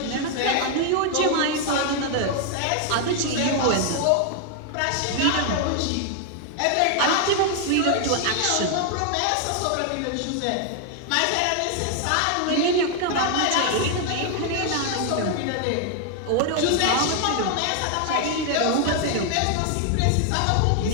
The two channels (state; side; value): different; both; correlation 0.00